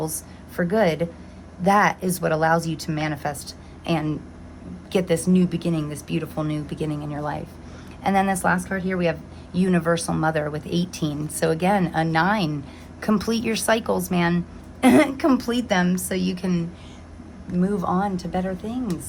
for good, that is what allows you to manifest and get this new beginning, this beautiful new beginning in your life. And then this last card here, we have Universal Mother with 18. So again, a 9, complete your cycles, man. Complete them so you can move on to better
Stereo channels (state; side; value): identical; both; correlation 1.00